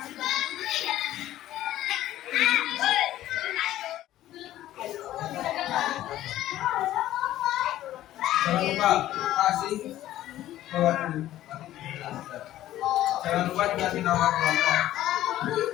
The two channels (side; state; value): right; quieter; 13.8 dB